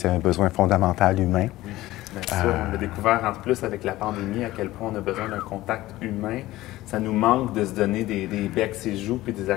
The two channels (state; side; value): quieter; right; 16.9 dB